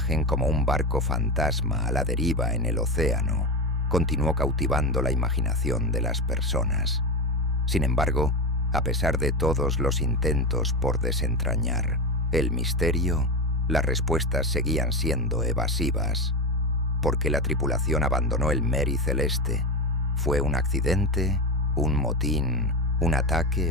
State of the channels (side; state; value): both; normal; correlation 0.19